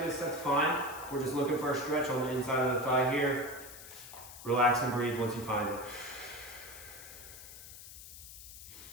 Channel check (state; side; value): noise; left; hiss, 14 dB below the sound